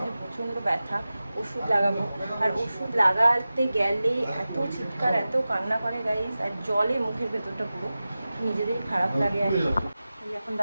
প্রচণ্ড ব্যথা, ওষুধ লাগাবো। আর ওষুধ লাগাতে গেলে এত চিৎকার, এত কান্না করে গাইস, আর জলে মুখের ভেতরটা পুরো নিজেদেরই খারাপ লাগে। আর এই এখন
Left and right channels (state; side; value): inverted; both; correlation -0.95